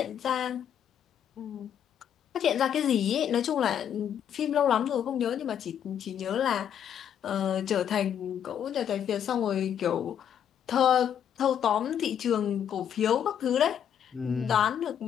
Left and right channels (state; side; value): quieter; right; 9.1 dB